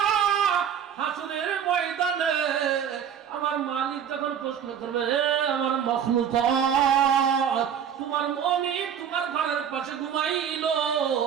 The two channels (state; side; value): quieter; left; 8.4 dB